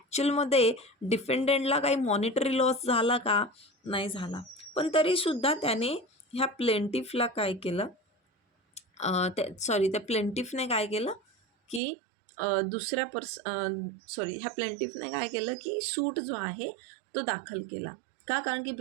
डिफेंडंटला काही मॉनिटरी लॉस झाला का? नाही झाला. पण तरीसुद्धा त्याने ह्या प्लेंटिफला काय केलं, त्या प्लेंटिफने काय केलं की ह्या प्लेंटिफने काय केलं की सूट जो आहे तो दाखल केला. का? कारण की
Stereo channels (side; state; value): left; drops out; at 11.8 s